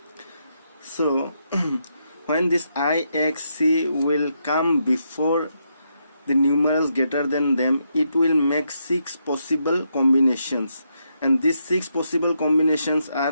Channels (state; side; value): inverted; both; correlation -0.80